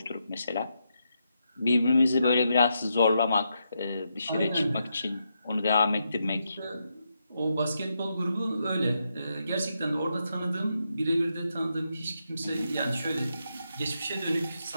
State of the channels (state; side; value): inverted; both; correlation -0.83